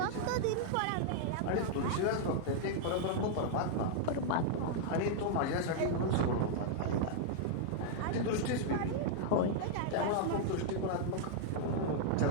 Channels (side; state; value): both; different; correlation -0.01